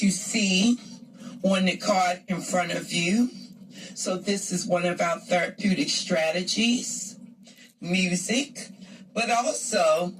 you see on the card in front of you. So this is one of our therapeutic strategies, music, but also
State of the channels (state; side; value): identical; both; correlation 1.00